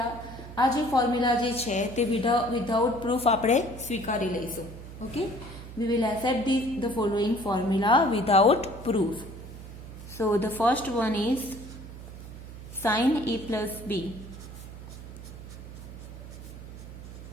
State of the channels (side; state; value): right; noise; hum, 13 dB below the sound